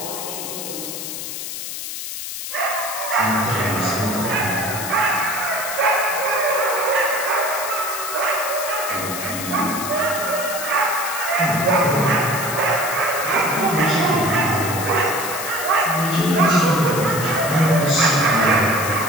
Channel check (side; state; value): left; noise; hiss, 7 dB below the sound